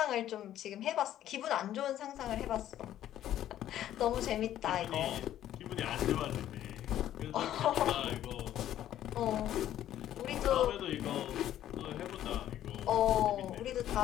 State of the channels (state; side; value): quieter; right; 12.0 dB